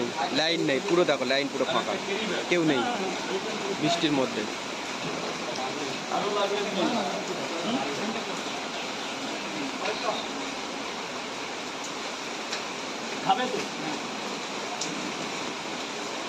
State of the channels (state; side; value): identical; both; correlation 1.00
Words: লাইন নেই, পুরো দেখো লাইন পুরো ফাঁকা, কেউ নেই বৃষ্টির মধ্যে। আরো লাগবে কি? খাবে তো